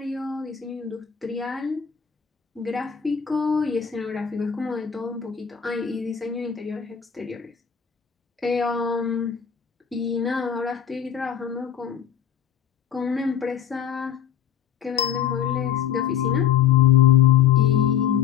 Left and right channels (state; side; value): quieter; right; 8.9 dB